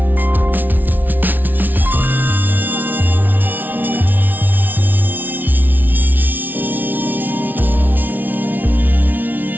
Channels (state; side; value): late; left; 0.086 ms